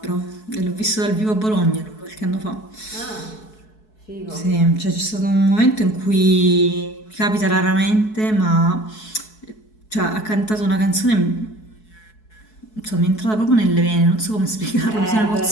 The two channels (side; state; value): right; late; 4.6 ms